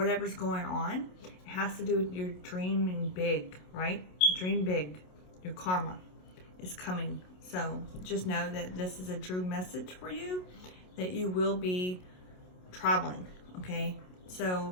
going on. It has to do with your dreaming big, right? Dream big. Your karma is coming. So just know that this is a true message for you, that you will be traveling, okay?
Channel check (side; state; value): right; late; 27 ms